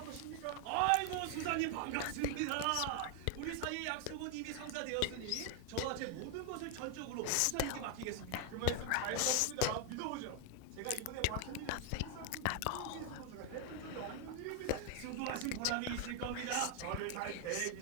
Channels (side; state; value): both; different; correlation 0.01